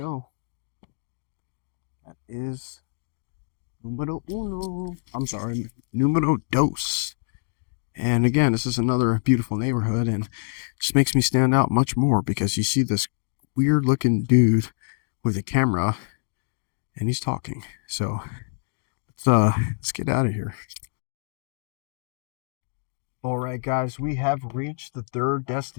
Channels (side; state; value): right; silent; digital silence